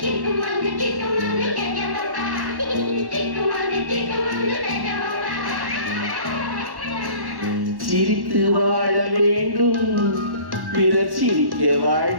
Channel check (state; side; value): late; left; 1.1 ms